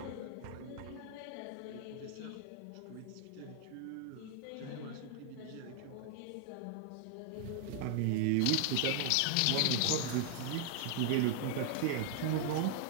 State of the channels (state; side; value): different; both; correlation 0.00